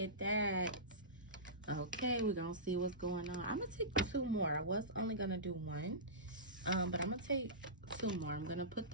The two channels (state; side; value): normal; both; correlation -0.19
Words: that. Okay, we're going to see what's going on. I'm going to take 2 more. I was only going to do 1. But I'm going to take 2 more. I'm going to put